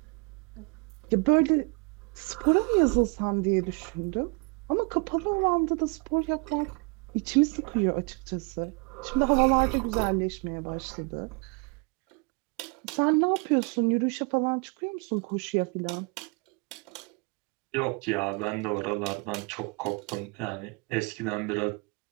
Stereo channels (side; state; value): left; quieter; 31.2 dB